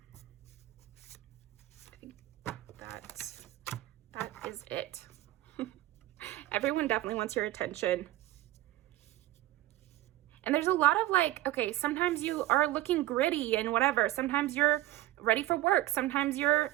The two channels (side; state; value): left; quieter; 15.6 dB